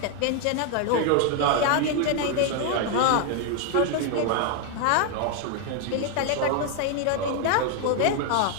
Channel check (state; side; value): different; both; correlation 0.00